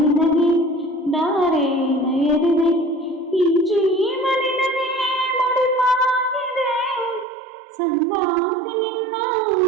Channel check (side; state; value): left; drops out; at 7.2 s